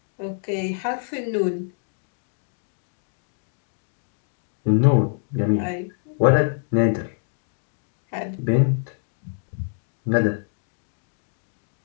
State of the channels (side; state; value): right; silent; digital silence